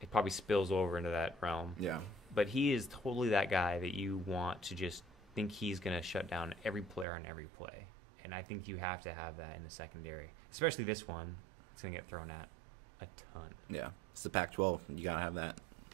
It probably spills over into that realm. Yeah. But he is totally that guy that you want to just think he's going to shut down every player on every play. And I think you have to have that in the secondary, especially this one. It's going to get thrown at a ton. Yeah. It's the Pac-12. You got to have that.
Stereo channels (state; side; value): drops out; left; at 7.1 s